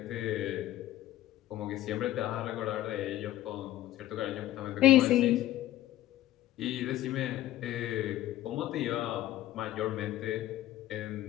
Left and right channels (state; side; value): quieter; right; 14.4 dB